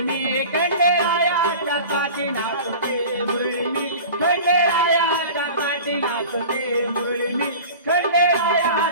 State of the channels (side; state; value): both; inverted; correlation -0.38